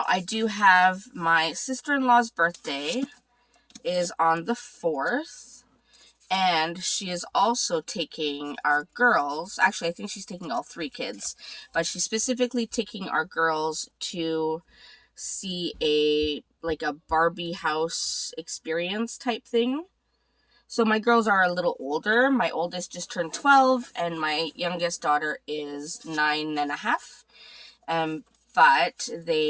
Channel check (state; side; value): identical; both; correlation 1.00